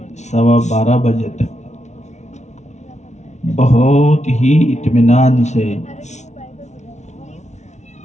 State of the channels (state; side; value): late; right; 0.33 ms